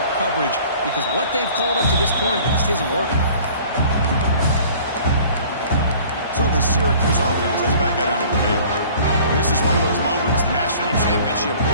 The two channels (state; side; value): inverted; both; correlation -0.50